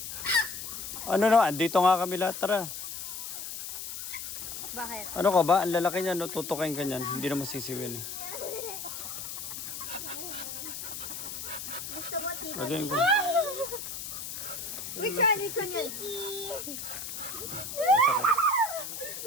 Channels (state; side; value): noise; left; hiss, 7 dB below the sound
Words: Ano naman? Dito nga kami lahat. Tara. Bakit? Ano ka ba? Ang lalaki niya, no? Tutukain ka niyan. Hindi na masisiwin. Gusto mo tito? Lagyan ko. Which one? Which one yun?